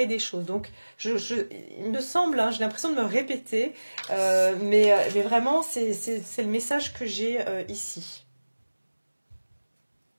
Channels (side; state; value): both; inverted; correlation -1.00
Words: des choses. Donc, il me semble, hein, j'ai l'impression de me répéter, mais vraiment, c'est le message que j'ai ici.